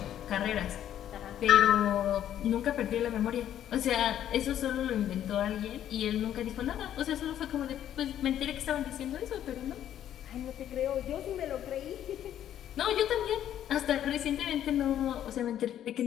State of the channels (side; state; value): right; quieter; 11.0 dB